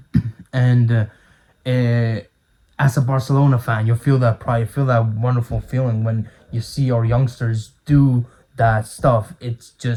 and as a Barcelona fan, you feel that pride, you feel that wonderful feeling when you see our youngsters do that stuff. It's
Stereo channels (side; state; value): both; identical; correlation 1.00